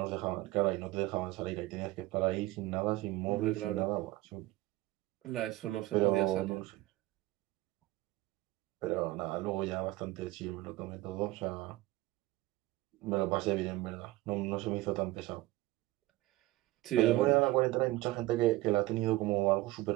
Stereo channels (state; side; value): quieter; left; 18.0 dB